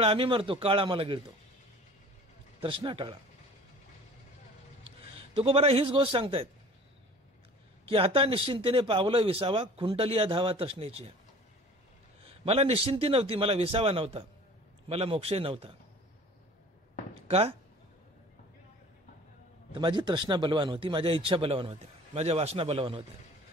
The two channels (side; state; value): both; normal; correlation 0.45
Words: आम्ही मरतो, काळ आम्हाला गिळतो. तृष्णा टाळा. तुकोबारा हीच गोष्ट सांगतायत की आता निश्चिंतीने पावलं विसावा, खुंटलिया धावा तृष्णेची. मला निश्चिंती नव्हती, मला विसावा नव्हता, मला मोक्षही नव्हता. का? तर माझी तृष्णा बलवान होती, माझ्या इच्छा बलवान होत्या, माझ्या वासना बलवान होत्या.